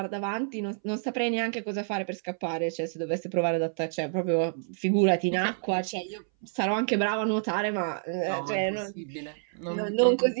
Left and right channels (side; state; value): left; silent; 59 dB below the other